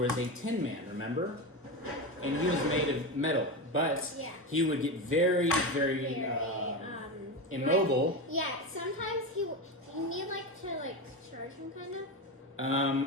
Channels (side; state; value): both; normal; correlation 0.19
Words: a Tin Man, remember? And he was made of metal, but he would get very, very immobile. Yeah, sometimes you need to charge him kind of.